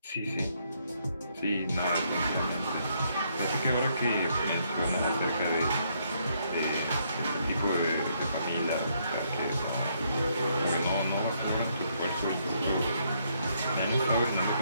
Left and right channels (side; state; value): both; inverted; correlation -0.73